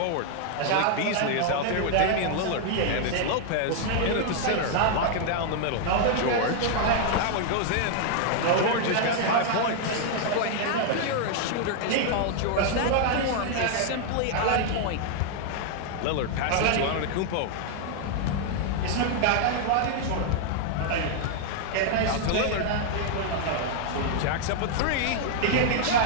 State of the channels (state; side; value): different; both; correlation 0.00